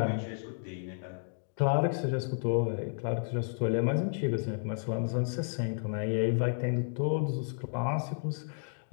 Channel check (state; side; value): silent; right; digital silence